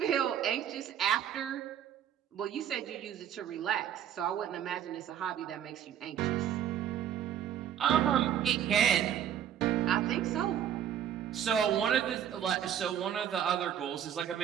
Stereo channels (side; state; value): left; quieter; 9.7 dB